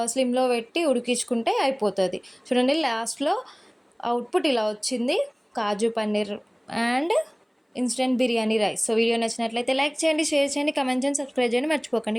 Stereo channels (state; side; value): identical; both; correlation 1.00